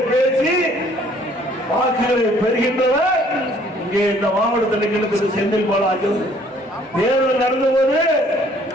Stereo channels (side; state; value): both; normal; correlation 0.60